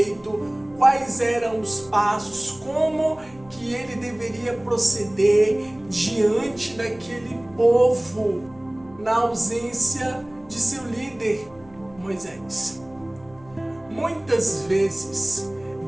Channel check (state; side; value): noise; left; hum, 25 dB below the sound